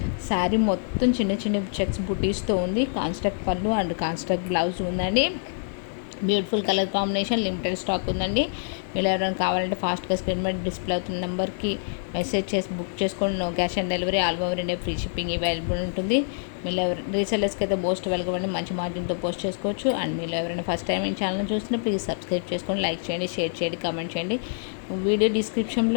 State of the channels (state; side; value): silent; right; 61 dB below the other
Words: శారీ మొత్తం చిన్న చిన్న చెక్స్ బుటీస్తో ఉంది. కాన్స్ట్రక్ట్ పళ్ళు అండ్ కాన్స్ట్రక్ట్ బ్లౌజ్ ఉందండి. Beautiful colour combination, limited stock ఉందండి. మీరు ఎవరైనా కావాలంటే ఫాస్ట్గా స్క్రీన్ మీద డిస్ప్లే అవుతున్న నెంబర్కి మెసేజ్ చేసి బుక్ చేసుకోండి. No cash on delivery, all over India free shipping available ఉంటుంది. మీరు రీసెల్లర్స్కి అయితే మోస్ట్ వెల్కమ్ అండి, మంచి మార్జిన్తో పోస్ట్ చేసుకోవచ్చు. అండ్ మీరు ఎవరైనా ఫస్ట్ టైం ఈ ఛానల్ చూస్తున్నా ప్లీజ్ సబ్స్క్రైబ్ చేసుకోండి, లైక్ చేయండి, షేర్ చేయండి, కామెంట్ చేయండి. వీడియో